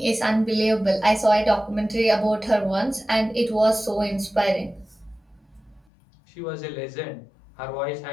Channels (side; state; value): right; drops out; at 5.9 s